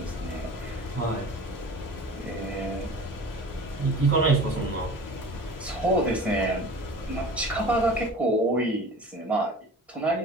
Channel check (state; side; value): normal; both; correlation 0.40